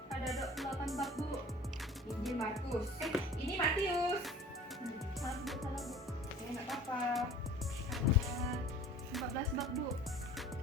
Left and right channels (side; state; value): both; normal; correlation 0.44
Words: Ada 8 bab Bu. Injil Markus. Ini Matius. Maaf Bu, salah Bu. Nggak apa-apa. Ada 14 bab Bu.